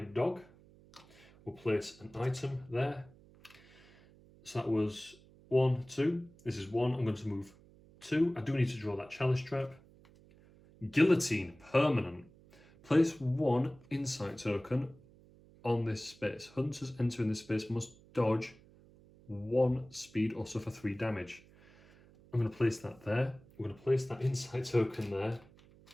dog. We'll place an item there. So that was 1, 2. This is 1. I'm going to move 2. I do need to draw that chalice trap. Guillotine, permanent. Place 1 insight token on this space. Hunters entering this space must dodge 1 speed or suffer 3 damage. I'm going to place that there. We're going to place that insight token there.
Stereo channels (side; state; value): right; noise; hum, 25 dB below the sound